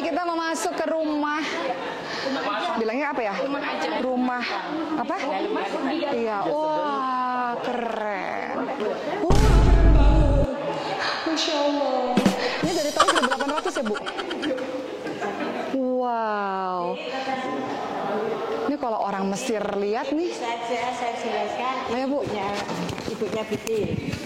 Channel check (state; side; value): identical; both; correlation 1.00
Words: kita mau masuk ke rumah. Bilangnya apa ya? Rumah apa? Iya. Wah keren. Wah keren banget. Masya Allah. Ini dari tahun 1800 ya Bu? Wow. Ini kalau orang Mesir lihat nih. Saya jelaskan. Ayo Bu. Ibunya Butin.